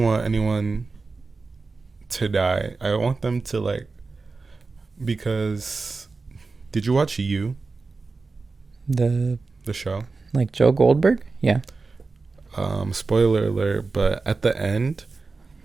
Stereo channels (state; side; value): quieter; left; 4.0 dB